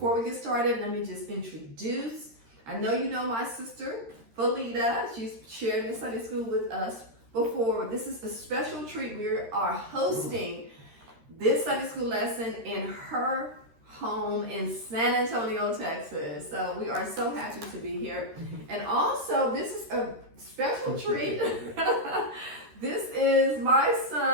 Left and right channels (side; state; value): left; late; 13 ms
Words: we get started, let me just introduce. I know you know my sister, Felita. She's shared in Sunday school with us before. This is a special treat. We are hosting this Sunday school lesson in her home in San Antonio, Texas. So we are so happy to be here. And also, this is a special treat. This is my